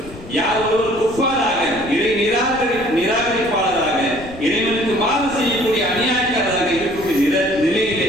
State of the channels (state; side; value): noise; left; rumble, 17 dB below the sound